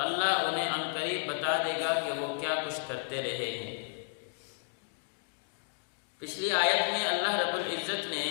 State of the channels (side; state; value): right; silent; digital silence